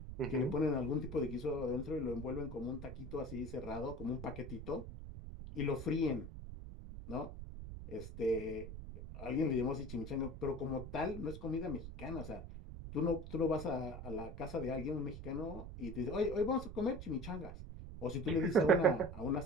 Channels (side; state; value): right; noise; rumble, 9 dB below the sound